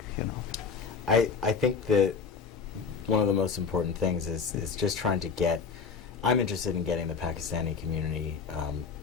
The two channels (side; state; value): right; quieter; 5.5 dB